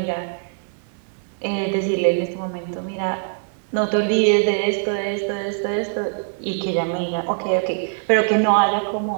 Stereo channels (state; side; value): silent; left; digital silence